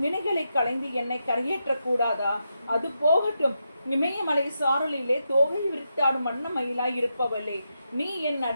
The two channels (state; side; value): inverted; both; correlation -0.85